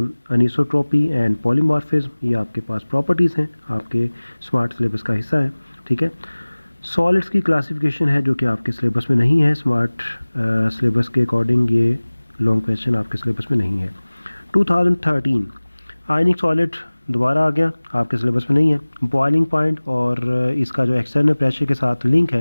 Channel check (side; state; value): both; inverted; correlation -1.00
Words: anisotropy and polymorphism, ये आपके पास प्रॉपर्टीज़ हैं, आपके स्मार्ट सिलेबस का हिस्सा है, ठीक है। सॉलिड्स की क्लासिफिकेशन है जो कि आपके सिलेबस में नहीं है, स्मार्ट सिलेबस के अकॉर्डिंग ये लॉन्ग क्वेश्चन आपके सिलेबस में नहीं है। 2013 आयनिक सॉलिड दोबारा आ गया, आपके सिलेबस में नहीं है। बॉइलिंग पॉइंट और इसका जो एक्सटर्नल प्रेशर के साथ लिंक